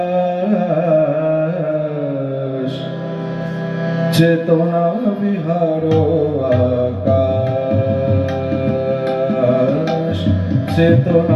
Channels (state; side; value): identical; both; correlation 1.00